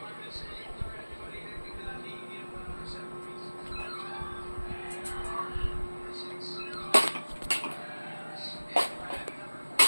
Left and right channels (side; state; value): both; inverted; correlation -1.00